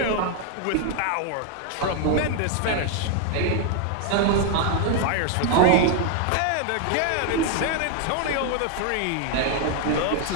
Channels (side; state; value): both; different; correlation 0.00